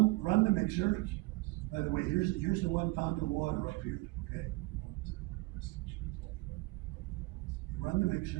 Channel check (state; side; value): quieter; left; 23.2 dB